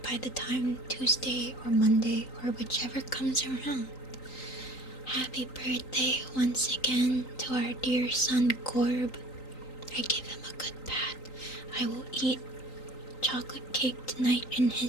by the time Tuesday or Monday or whichever comes around. Happy birthday once again to our dear son Corb. I give him a good pat. I will eat chocolate cake tonight in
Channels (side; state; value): right; late; 3.9 ms